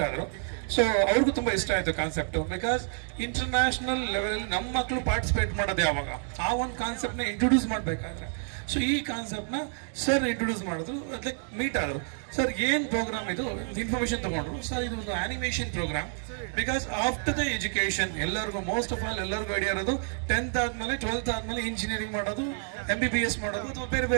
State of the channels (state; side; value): silent; left; 56 dB below the other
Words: ಆದರು. ಸೊ ಅವ್ರಿಗೂ ತುಂಬ ಇಷ್ಟ ಆಯಿತು ಕಾನ್ಸೆಪ್ಟು. ಬಿಕಾಸ್ ಇಂಟರ್ನ್ಯಾಷನಲ್ ಲೆವೆಲಲ್ಲಿ ನಮ್ಮ ಮಕ್ಕಳು ಪಾರ್ಟಿಸಿಪೇಟ್ ಮಾಡೋದು ಯಾವಾಗ, ಆ ಒಂದು ಕಾನ್ಸೆಪ್ಟ್ನ ಇಂಟ್ರೊಡ್ಯೂಸ್ ಮಾಡಬೇಕಾದ್ರೆ. ಸೊ ಈ ಕಾನ್ಸೆಪ್ಟ್ನ ಸರ್ ಇಂಟ್ರೊಡ್ಯೂಸ್ ಮಾಡಿದ್ರು, ಲೈಕ್ ಮೀಟ್ ಆದರು. ಸರ್ ಏನು ಪ್ರೋಗ್ರಾಮ್ ಇದು, ಇನ್ಫಾರ್ಮೇಷನ್ ತೊಗೊಂಡ್ರು. ಸರ್ ಇದು ಒಂದು animation programme. Because after the education ಎಲ್ಲರಿಗೂ ಮೋಸ್ಟ್ ಆಫ್ ಆಲ್ ಎಲ್ಲರಿಗೂ ಐಡಿಯಾ ಇರೋದು 10th ಆದಮೇಲೆ 12th ಆದಮೇಲೆ ಇಂಜಿನಿಯರಿಂಗ್ ಮಾಡೋದು, MBBS ಮಾಡೋದು, ಅಥವಾ ಬೇರೆ